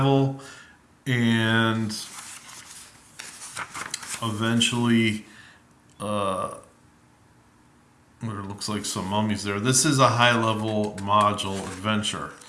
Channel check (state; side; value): identical; both; correlation 1.00